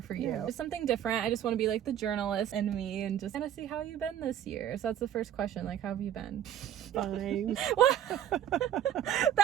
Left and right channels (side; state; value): left; quieter; 10.6 dB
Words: you. Yeah. Just something different. I just want to be like the journalist in me and just kind of see how you've been this year. So that's the first question. Like, how have you been? Fine.